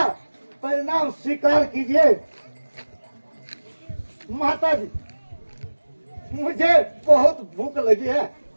परिणाम स्वीकार कीजिए। माता जी, मुझे बहुत भूख लगी है,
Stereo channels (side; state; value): both; inverted; correlation -1.00